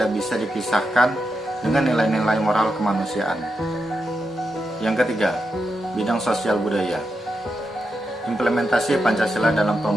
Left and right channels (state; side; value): normal; both; correlation 0.86